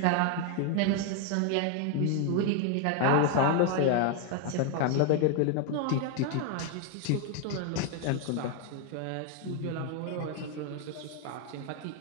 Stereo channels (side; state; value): both; different; correlation 0.01